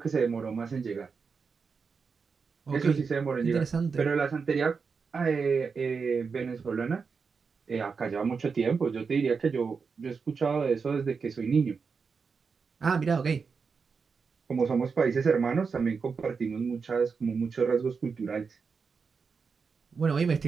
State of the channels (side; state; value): left; quieter; 5.3 dB